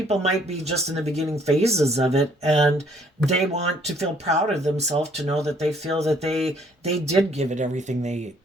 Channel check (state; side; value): normal; both; correlation 0.63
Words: might be just in the beginning phases of it, and they want to feel proud of themselves to know that they feel that they did give it everything they